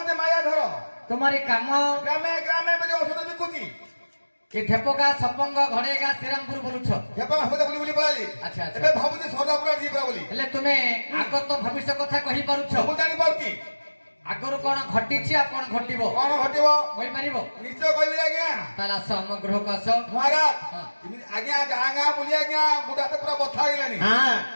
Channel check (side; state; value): both; inverted; correlation -1.00